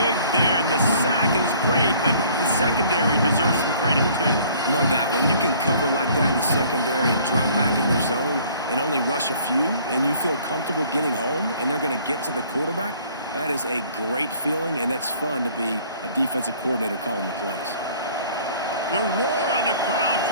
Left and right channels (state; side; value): inverted; both; correlation -0.55